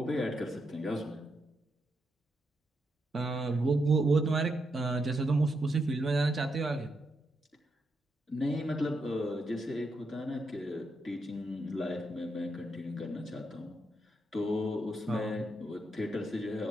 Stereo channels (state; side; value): normal; both; correlation 0.82